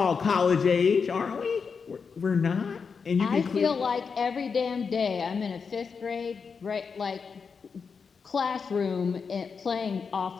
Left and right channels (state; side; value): quieter; right; 5.6 dB